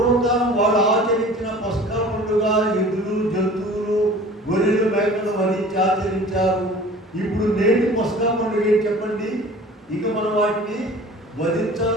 వాళ్ళు ఆచరించిన పస్కా పండుగ ఎద్దులు జంతువులు గొర్రెలు మేకలు వధించి ఆచరించారు. ఇప్పుడు నేటి పస్కా పండుగ ఏంటి చెప్పండి? ఇక మనం వాటిని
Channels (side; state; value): both; normal; correlation 0.44